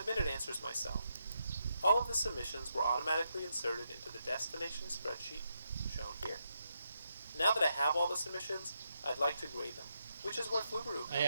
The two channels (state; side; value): inverted; both; correlation -0.82